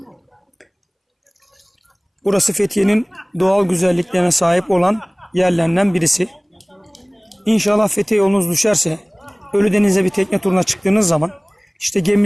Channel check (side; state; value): both; identical; correlation 1.00